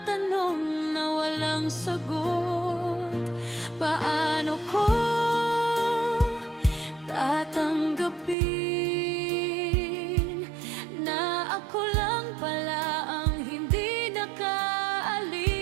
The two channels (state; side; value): drops out; left; at 8.3 s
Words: tanong na walang sagot. Paano ko tatanggapin na ako lang pala ang hindi nakaalis?